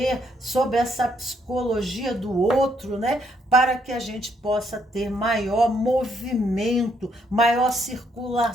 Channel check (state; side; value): normal; both; correlation 0.72